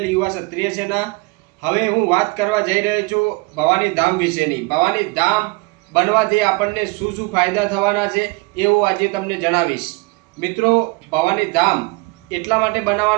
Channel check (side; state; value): left; quieter; 26.9 dB